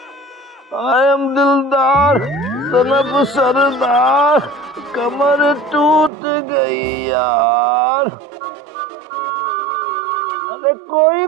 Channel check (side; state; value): left; drops out; at 6.1 s